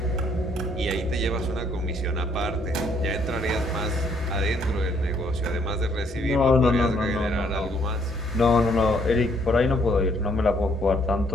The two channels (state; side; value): normal; both; correlation 0.67